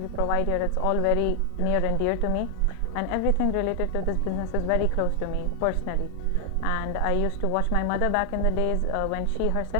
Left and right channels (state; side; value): different; both; correlation 0.00